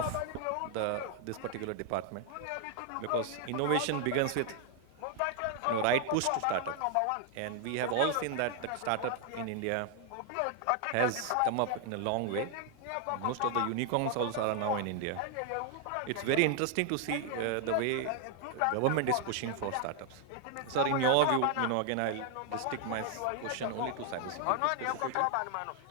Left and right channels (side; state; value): both; different; correlation 0.00